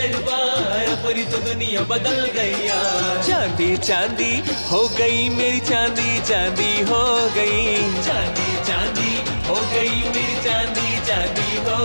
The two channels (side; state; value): both; inverted; correlation -1.00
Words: अपनी तो दुनिया बदल गई यार। चांदी चांदी हो गई मेरी चांदी, चांदी हो गई। चांदी चांदी हो गई मेरी चांदी, चांदी हो